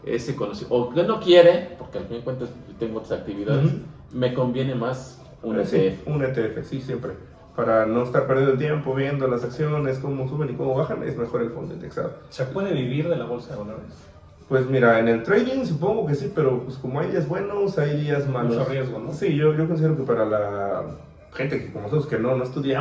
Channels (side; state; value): both; identical; correlation 1.00